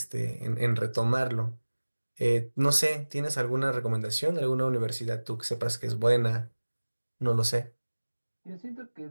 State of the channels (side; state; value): both; inverted; correlation -1.00